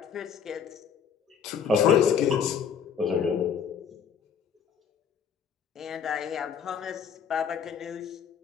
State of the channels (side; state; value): right; quieter; 7.4 dB